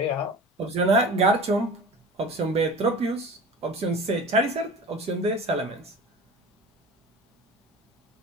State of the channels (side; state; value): both; normal; correlation 0.36